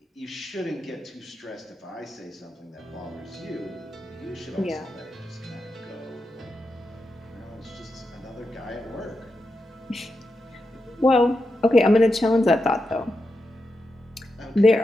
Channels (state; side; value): normal; both; correlation 0.87